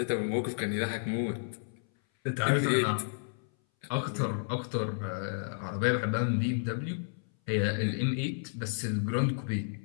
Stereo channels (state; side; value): silent; right; 57 dB below the other